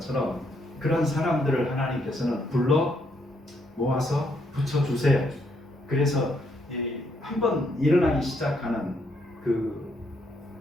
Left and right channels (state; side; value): normal; both; correlation 0.74